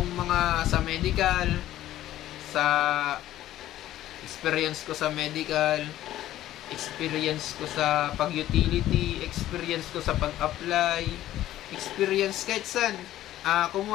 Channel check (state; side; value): quieter; right; 13.7 dB